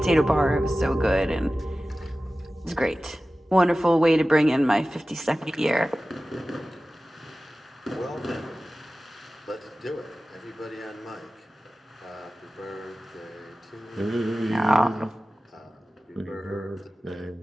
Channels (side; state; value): both; normal; correlation 0.96